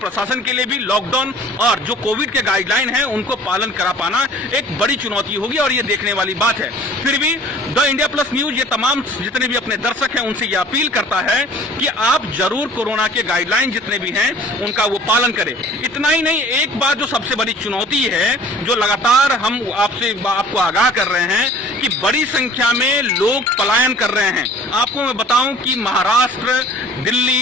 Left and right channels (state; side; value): normal; both; correlation 0.48